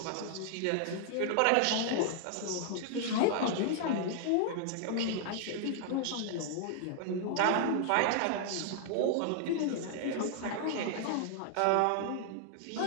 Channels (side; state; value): both; different; correlation -0.01